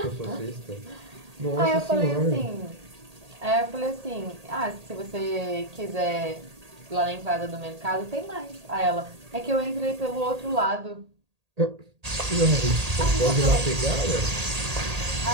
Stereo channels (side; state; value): left; late; 1.8 ms